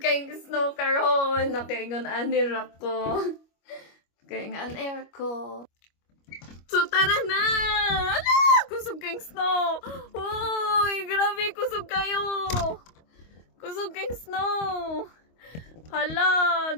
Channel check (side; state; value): right; late; 25 ms